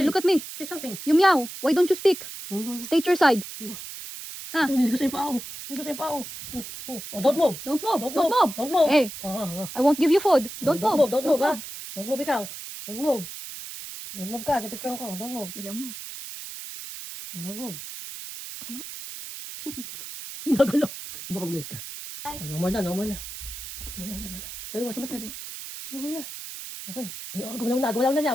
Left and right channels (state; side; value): noise; right; hiss, 10 dB below the sound